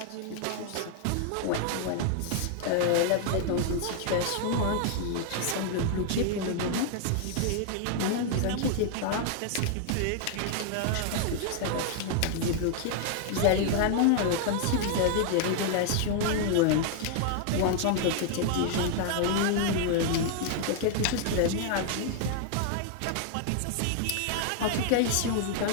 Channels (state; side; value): different; both; correlation 0.00